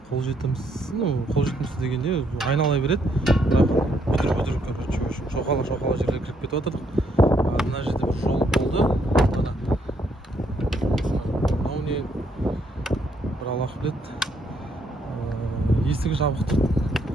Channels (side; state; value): both; normal; correlation 0.72